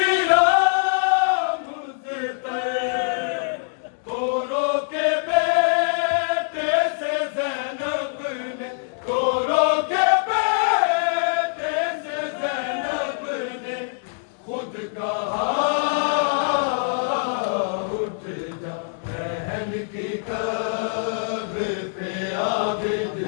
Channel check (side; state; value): right; silent; digital silence